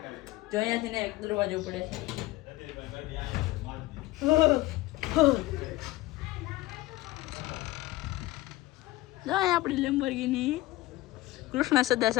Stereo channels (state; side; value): quieter; right; 18.3 dB